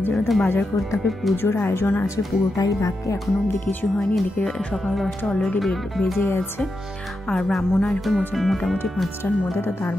জন্য তো বাজার করতে হবে। পুজোর আয়োজন আছে, পুরোটাই বাকি, এখনও অবধি কিছু হয়নি। এদিকে সকাল 10টা অলরেডি বেজে গেছে, আর ব্রাহ্মণ আসবে মোটামুটি 5টার মধ্যে। তো তার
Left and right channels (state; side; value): normal; both; correlation 0.87